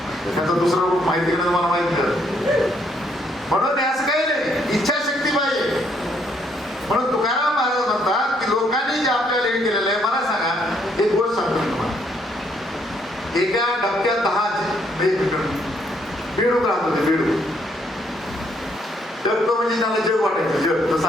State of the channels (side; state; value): both; normal; correlation 0.70